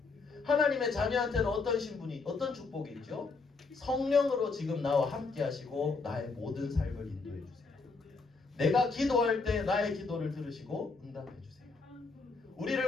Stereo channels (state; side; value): quieter; right; 4.2 dB